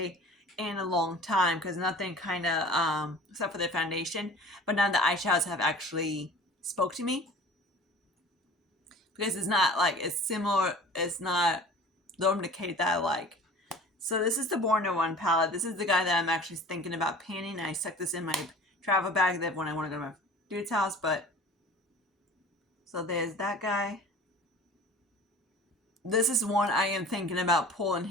in a long time because nothing kind of except for the foundation, but none of the eyeshadows have actually spoke to me because it's not like it's similar. It's not the Decay that I like. So this is the Born to One palette. This is the guy that I'm actually thinking about painting. I stuck this in my travel bag that when I want to go to my dude's house, but so there's that guy. This is one I am thinking about pulling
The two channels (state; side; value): normal; both; correlation 0.43